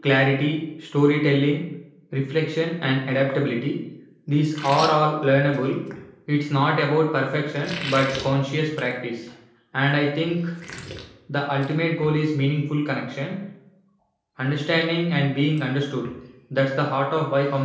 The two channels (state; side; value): identical; both; correlation 1.00